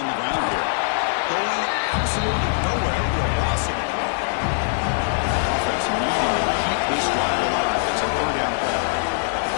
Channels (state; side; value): silent; right; digital silence